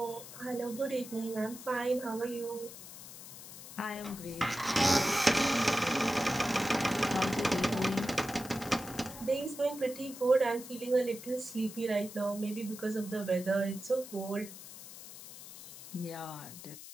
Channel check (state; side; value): noise; left; hiss, 14 dB below the sound